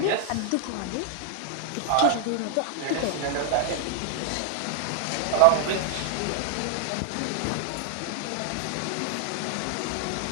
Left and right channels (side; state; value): both; different; correlation 0.00